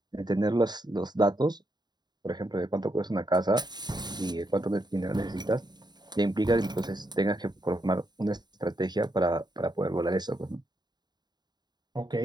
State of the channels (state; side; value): late; left; 0.20 ms